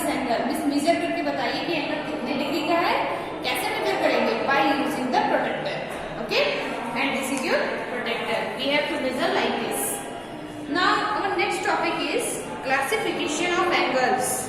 angle. measure करके बताइए कि एंगल कितने डिग्री का है, कैसे मेजर करेंगे? By using the protector. Okay? And this is your protector. We have to measure like this. Now our next topic is classification of angles.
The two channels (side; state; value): both; identical; correlation 1.00